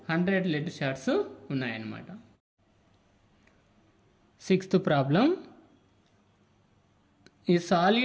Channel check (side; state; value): both; identical; correlation 1.00